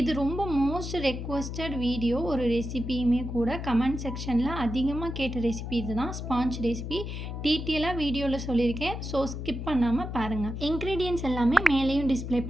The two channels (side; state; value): left; noise; hum, 6 dB below the sound